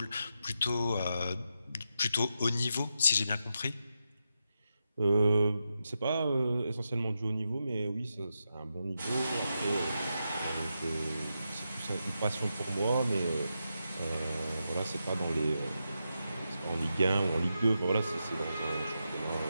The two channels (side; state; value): both; inverted; correlation -0.86